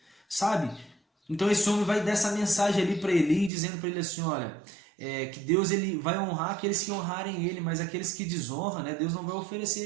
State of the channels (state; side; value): drops out; left; at 3.5 s